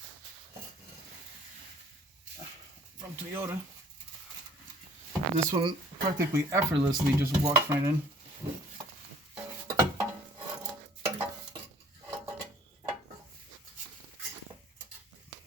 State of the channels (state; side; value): normal; both; correlation 0.55